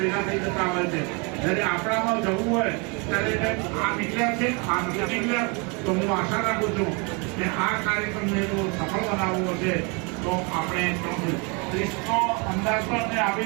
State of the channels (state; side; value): quieter; left; 31.7 dB